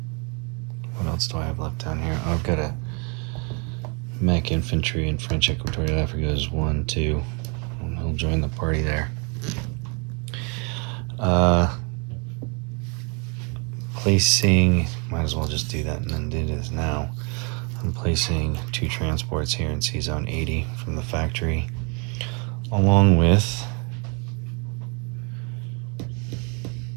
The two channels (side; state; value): left; quieter; 33.9 dB